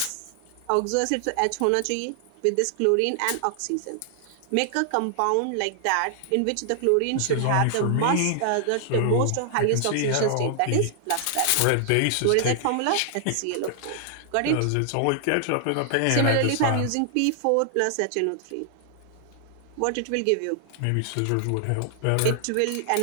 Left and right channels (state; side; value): different; both; correlation 0.00